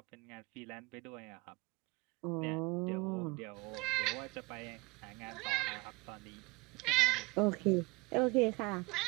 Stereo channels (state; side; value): quieter; left; 25.2 dB